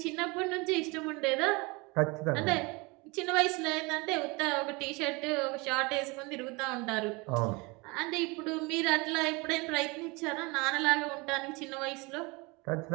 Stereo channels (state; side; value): quieter; left; 26.5 dB